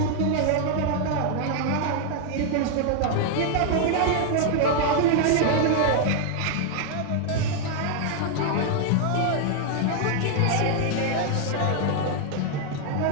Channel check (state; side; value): different; both; correlation 0.00